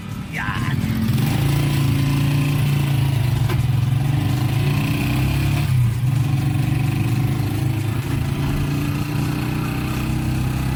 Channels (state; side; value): identical; both; correlation 1.00